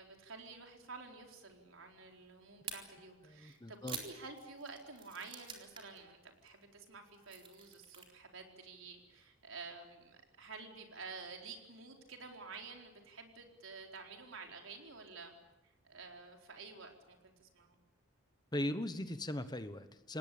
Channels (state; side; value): normal; both; correlation 0.42